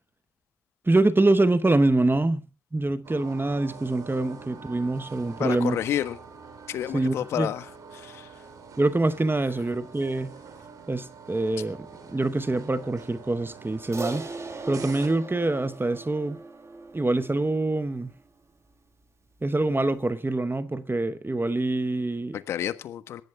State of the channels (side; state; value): both; normal; correlation 0.90